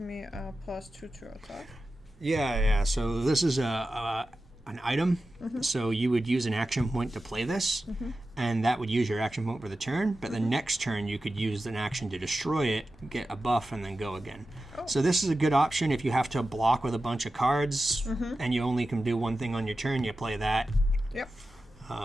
a +2 to attack. Yeah. So this is an item. So you would use an action point to play this, and that would use your action point for the turn. But the next turn, you could use an action to destroy it, get a buff, and then go again. So this is a good option if you have to block with a bunch of cards, and you only can do one thing on your turn. You play that. Yep.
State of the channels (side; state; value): both; normal; correlation 0.93